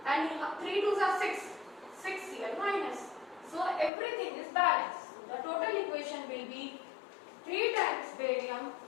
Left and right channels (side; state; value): right; drops out; at 3.9 s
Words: and 3 2s are 6 Cl minus. So everything is balanced. The total equation will be 3 times barium